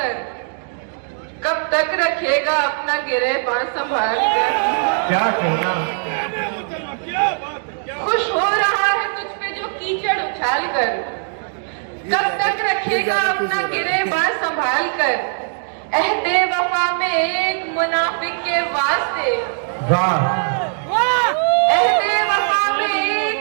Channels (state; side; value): silent; left; digital silence